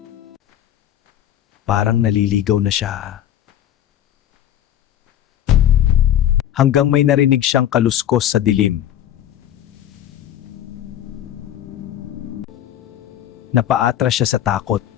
Parang naliligaw na siya. Hanggang may narinig siyang kaluskos sa dilim. Napaatras siya sa takot.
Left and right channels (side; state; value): right; quieter; 11.3 dB